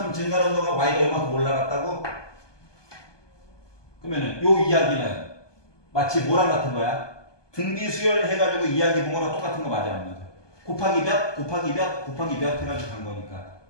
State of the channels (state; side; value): late; right; 1.2 ms